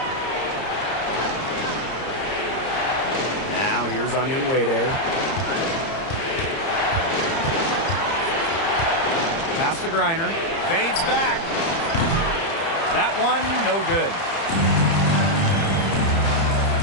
Now here's Onion Wade. Pass to Griner. Fades back. That one, no good.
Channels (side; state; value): right; late; 30 ms